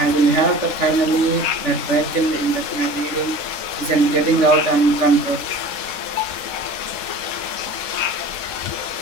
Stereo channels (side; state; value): right; late; 3.7 ms